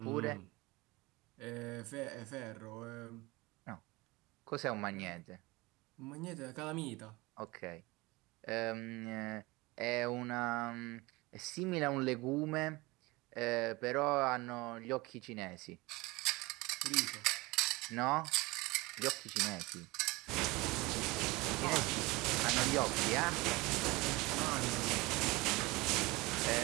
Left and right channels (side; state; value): left; quieter; 22.8 dB